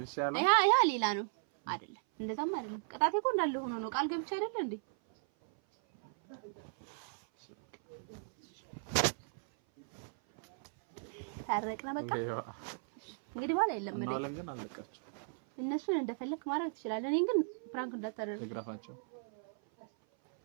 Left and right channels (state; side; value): silent; left; 54 dB below the other